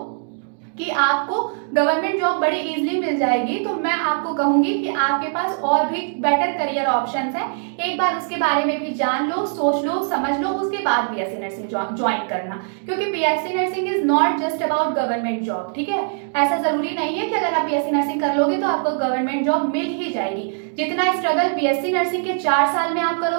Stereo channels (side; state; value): left; silent; digital silence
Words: कि आपको गवर्नमेंट जॉब बड़ी इजीली मिल जाएगी, तो मैं आपको कहूंगी कि आपके पास और भी बेटर करियर ऑप्शंस हैं। एक बार उसके बारे में भी जान लो, सोच लो, समझ लो, उसके बाद बीएससी नर्सिंग ज्वाइन करना। क्योंकि BSc nursing is not just about government job, ठीक है। ऐसा जरूरी नहीं है कि अगर आप बीएससी नर्सिंग कर लोगे तो आपको गवर्नमेंट जॉब मिल ही जाएगी। जितना स्ट्रगल बीएससी नर्सिंग के 4 साल में आप